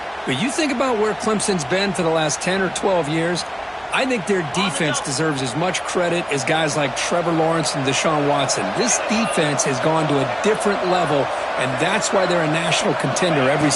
But you think about where Clemson's been for the last 10 or 12 years, I think their defense deserves as much credit as guys like Trevor Lawrence and Deshaun Watson. This defense has gone to a different level, and that's why they're a national contender every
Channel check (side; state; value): both; identical; correlation 1.00